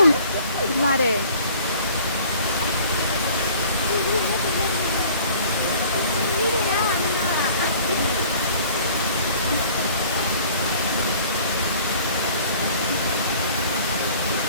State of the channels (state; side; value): inverted; both; correlation -0.50